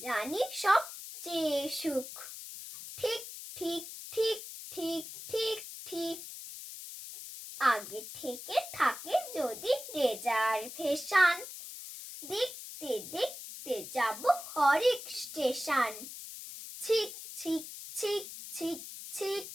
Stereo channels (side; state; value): left; noise; hiss, 11 dB below the sound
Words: জানি সবচেয়ে সুখ। ঠিক ঠিক ঠিক ঠিক ঠিক ঠিক। আগে থেকে থাকে যদি রিজার্ভেশন, দেখতে দেখতে যাব হরেক station. Six six six six six